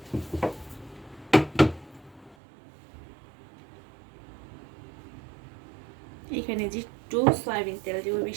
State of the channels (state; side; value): drops out; left; at 2.4 s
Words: এখানে যে একটু সয়াবিন তেল দিব,